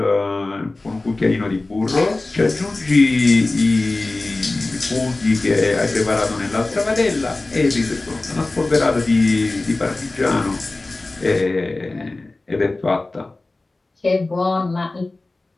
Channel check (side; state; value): right; quieter; 3.1 dB